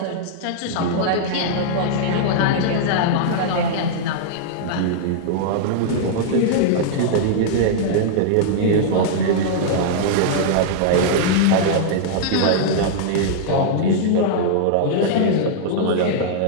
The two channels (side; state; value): both; different; correlation -0.01